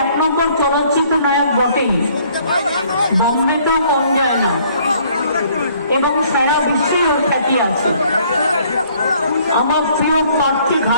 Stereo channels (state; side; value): inverted; both; correlation -0.61